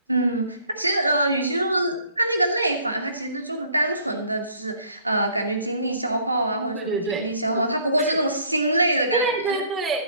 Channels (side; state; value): both; inverted; correlation -0.58